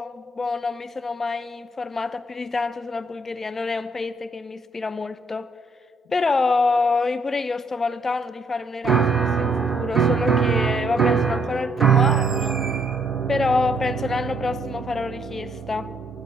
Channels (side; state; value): both; normal; correlation 0.70